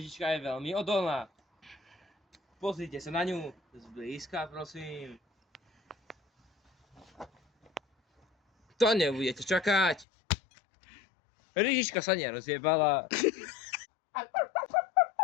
je veľmi odolná. Pozrite sa na ňu zblízka, prosím. To nebudete čakať. Lyžička sa nerozjebala.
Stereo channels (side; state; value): right; drops out; at 10.1 s